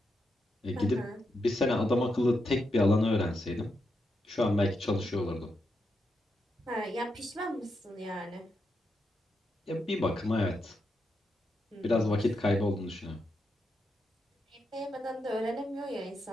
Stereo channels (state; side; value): normal; both; correlation 0.84